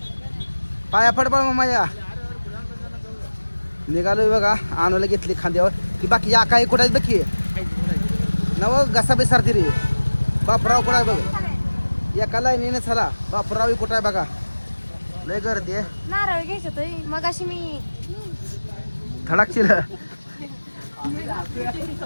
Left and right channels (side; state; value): both; inverted; correlation -1.00